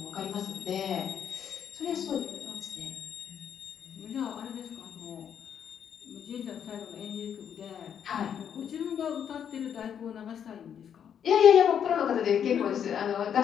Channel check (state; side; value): quieter; right; 8.5 dB